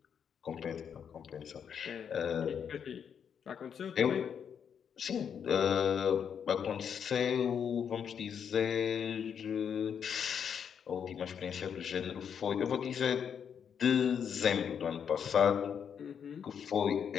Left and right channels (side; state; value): right; quieter; 7.7 dB